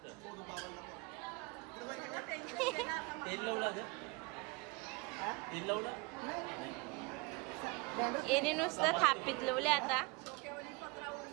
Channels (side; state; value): left; quieter; 27.7 dB